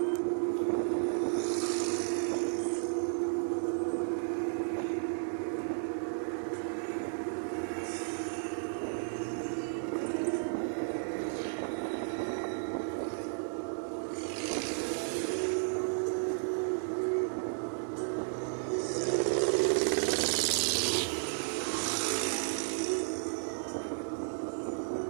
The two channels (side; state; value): left; silent; digital silence